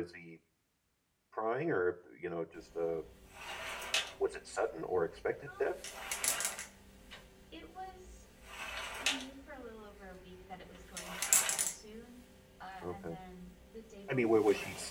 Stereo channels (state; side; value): identical; both; correlation 1.00